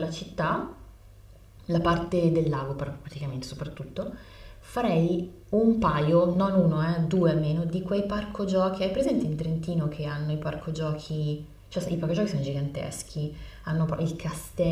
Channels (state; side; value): identical; both; correlation 1.00